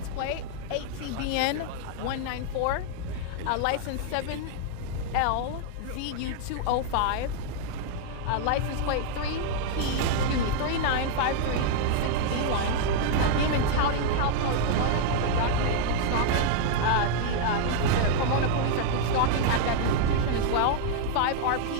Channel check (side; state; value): both; different; correlation -0.01